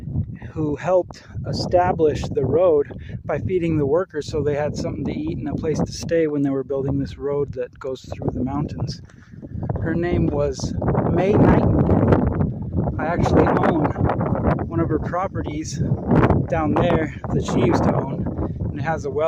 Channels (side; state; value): both; identical; correlation 1.00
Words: who helped establish the road by feeding the workers so they had something to eat and a place to stay when they were building this road that goes through the mountains. Her name was May Nightingale. I actually own one of her properties down there that she used to own, and it has a